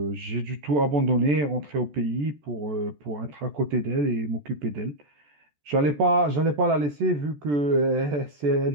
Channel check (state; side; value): late; left; 14 ms